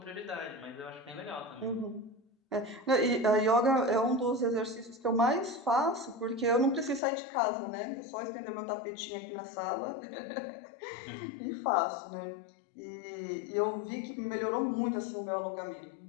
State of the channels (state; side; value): drops out; right; at 7.0 s